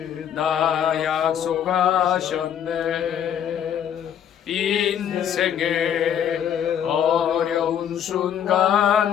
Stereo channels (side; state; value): right; quieter; 9.2 dB